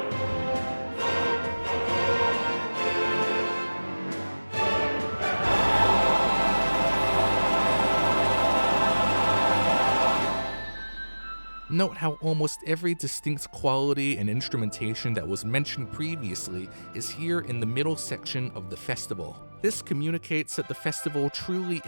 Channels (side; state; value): both; inverted; correlation -1.00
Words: Note how almost every distinct quality and instrumentation that was mentioned previously is here in the middle section of the festival. This communicates that the festival truly